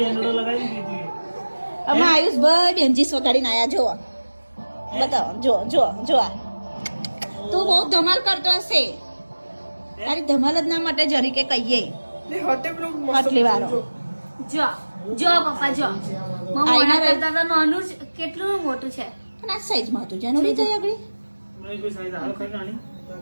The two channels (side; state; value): both; inverted; correlation -1.00